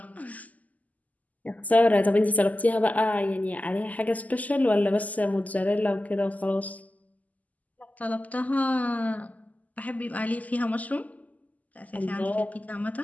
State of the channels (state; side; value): late; right; 0.077 ms